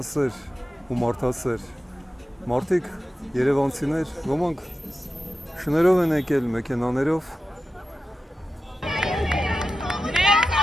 ու մարդասեր մարդիկ, երևանցիներ, ոմանք շներով են եկել, մեքենաներով։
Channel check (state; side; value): normal; both; correlation 0.92